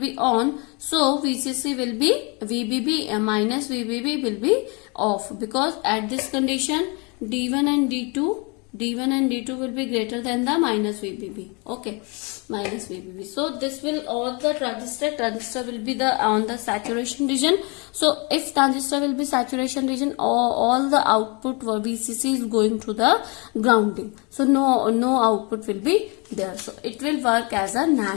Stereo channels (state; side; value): quieter; right; 31.2 dB